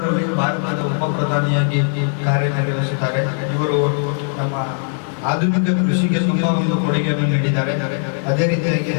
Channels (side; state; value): right; silent; 67 dB below the other